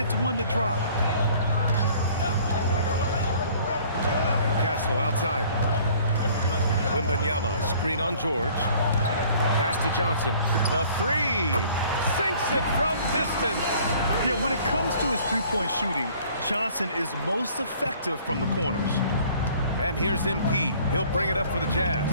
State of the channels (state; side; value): inverted; both; correlation -0.54